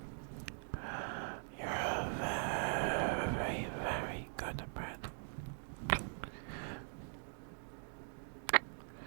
you're a very, very good bread. Good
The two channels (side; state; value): left; silent; digital silence